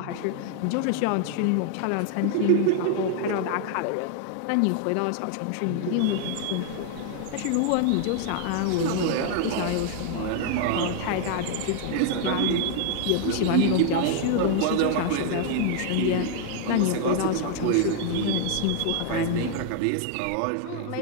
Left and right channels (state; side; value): different; both; correlation 0.00